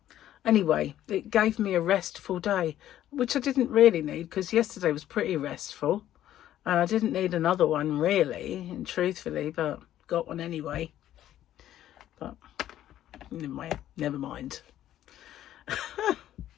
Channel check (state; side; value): quieter; right; 12.3 dB